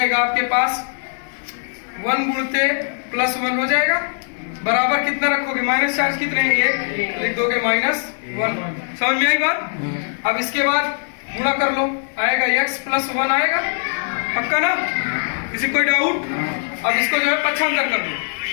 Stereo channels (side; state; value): right; silent; digital silence